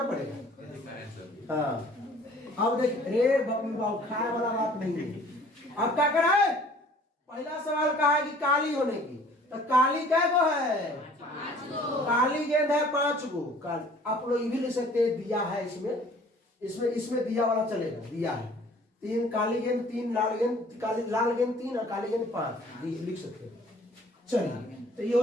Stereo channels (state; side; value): normal; both; correlation 0.53